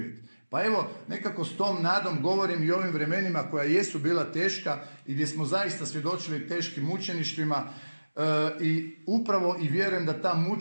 Pa evo, nekako s tom nadom govorim i ovim vremenima koja jesu bila teška i gdje smo zaista svjedočili teškim mučeništvima, i upravo i vjerujem da ta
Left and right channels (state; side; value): inverted; both; correlation -1.00